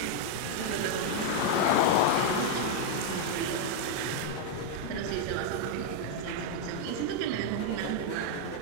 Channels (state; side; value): different; both; correlation 0.00